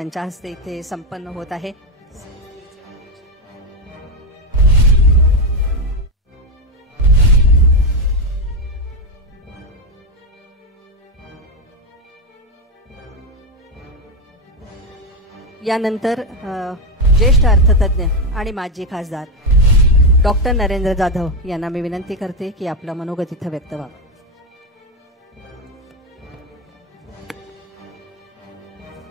हस्ते इथे संपन्न होत आहे। यानंतर ज्येष्ठ अर्थतज्ञ आणि माजी खासदार डॉक्टर नरेंद्र जाधव यांना मी विनंती करते की आपलं मनोगत इथं व्यक्त व्हावं।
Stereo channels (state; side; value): normal; both; correlation 0.09